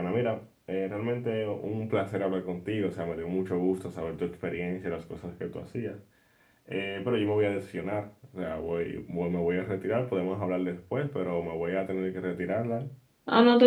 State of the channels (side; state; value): both; identical; correlation 1.00